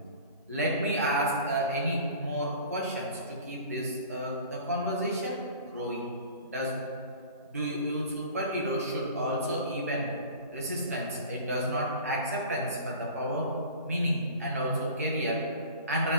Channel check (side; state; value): both; inverted; correlation -0.41